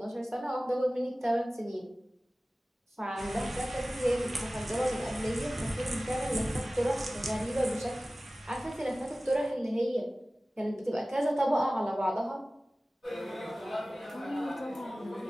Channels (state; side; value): normal; both; correlation 0.97